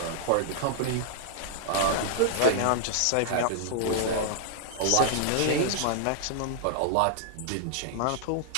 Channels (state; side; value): different; both; correlation -0.01